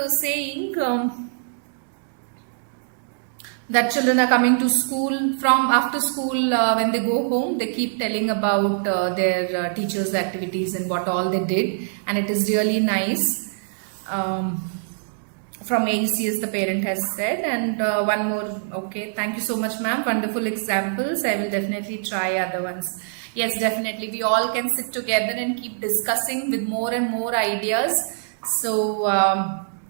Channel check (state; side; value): silent; left; 63 dB below the other